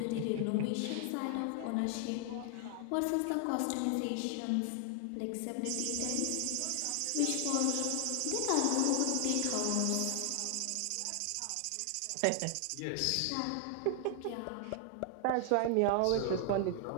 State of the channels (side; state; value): both; different; correlation 0.00